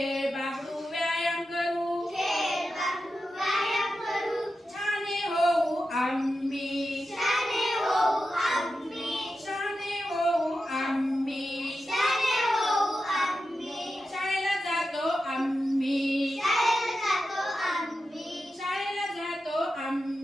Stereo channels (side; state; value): both; normal; correlation 0.91